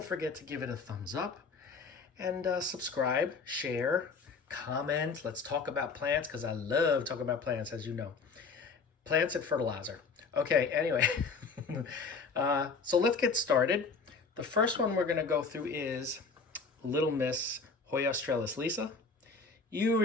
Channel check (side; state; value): right; quieter; 4.7 dB